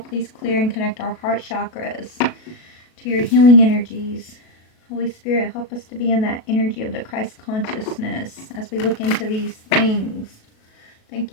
please clear and connect our heart chakras to your healing energies. Holy Spirit, help us to be in that energy of the Christ consciousness as we look into these things.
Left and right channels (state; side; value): late; right; 37 ms